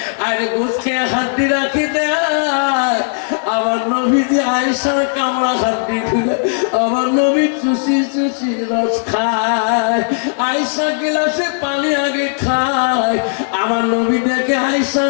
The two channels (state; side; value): silent; right; 64 dB below the other